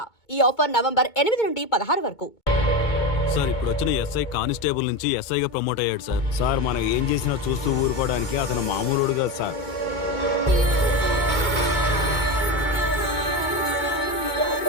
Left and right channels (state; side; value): late; right; 2.2 ms